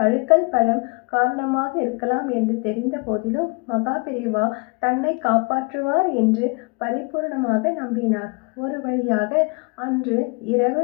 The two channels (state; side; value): quieter; right; 31.1 dB